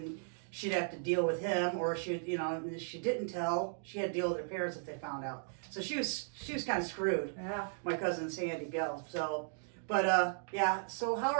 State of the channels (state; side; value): silent; left; digital silence